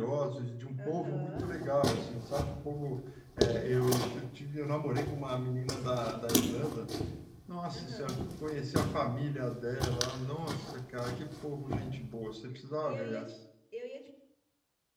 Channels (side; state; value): both; identical; correlation 1.00